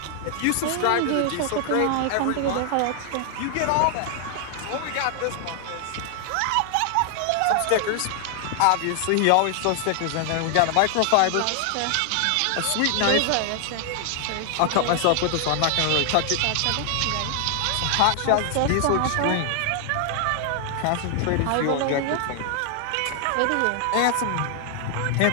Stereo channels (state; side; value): different; both; correlation 0.00